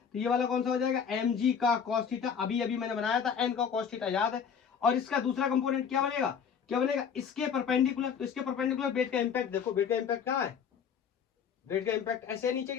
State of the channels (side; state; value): right; quieter; 7.1 dB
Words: ये वाला कौन सा हो जाएगा? mg का cos थीटा। अभी अभी मैंने बनाया था n का cos थीटा, याद है। और इसका दूसरा कंपोनेंट क्या बनेगा? इसके परपेंडिकुलर। तो इसके परपेंडिकुलर वेट का इंपैक्ट देखो, वेट का इंपैक्ट कहां है? वेट का इंपैक्ट ऐसे है नीचे की